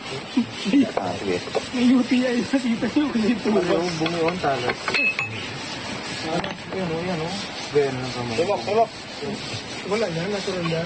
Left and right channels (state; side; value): noise; right; rumble, 30 dB below the sound